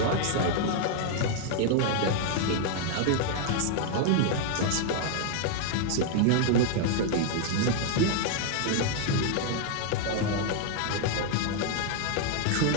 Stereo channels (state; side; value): different; both; correlation 0.00